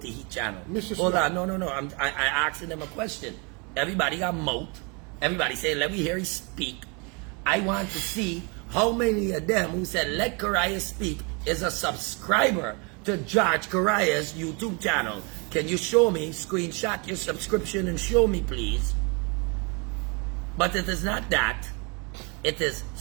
his channel? Mr. Hold Smith. on, no. I asking them a question. Everybody got mouth. Everybody saying, let me hear him speak. I want to see how many of them who said, let Correia speak, is a subscriber to George Correia's YouTube channel. Can you show me, screenshot your subscription and show me, please? But it is not that. It is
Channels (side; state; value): left; quieter; 32.2 dB